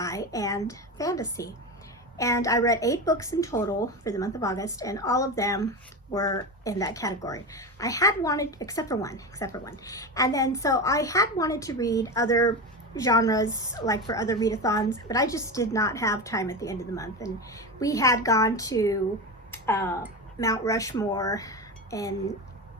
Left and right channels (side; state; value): both; normal; correlation 0.21